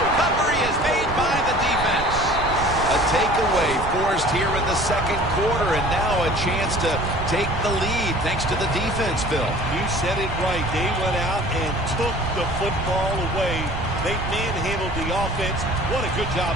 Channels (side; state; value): right; noise; rumble, 7 dB below the sound